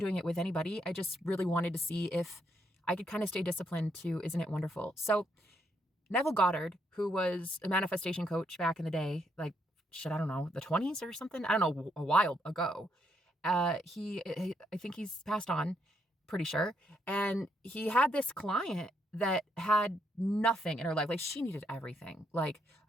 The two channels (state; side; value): normal; both; correlation 0.76